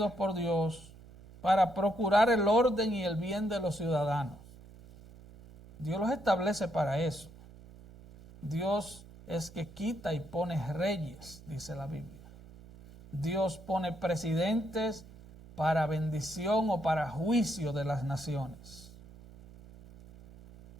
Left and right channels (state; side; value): noise; right; hum, 20 dB below the sound